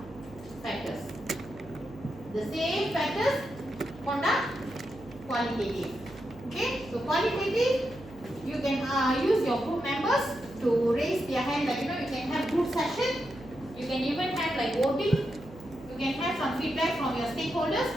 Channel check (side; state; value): right; noise; hum, 19 dB below the sound